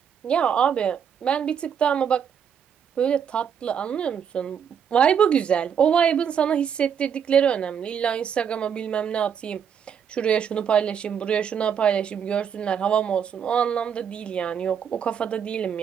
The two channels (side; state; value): left; quieter; 7.8 dB